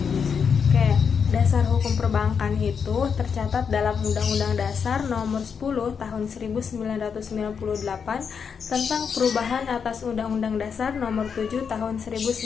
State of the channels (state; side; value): quieter; right; 6.5 dB